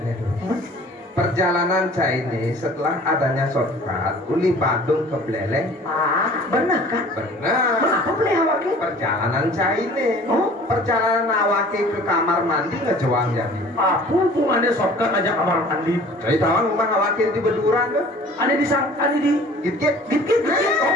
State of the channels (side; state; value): both; normal; correlation 0.48